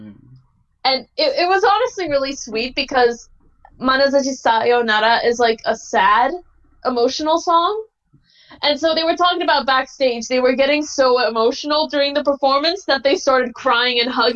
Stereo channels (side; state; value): both; identical; correlation 1.00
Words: And it was honestly really sweet because Manazashi Sayonara is like a sad, emotional song. And so they were talking about backstage. They were getting so emotional during the performance that they started crying and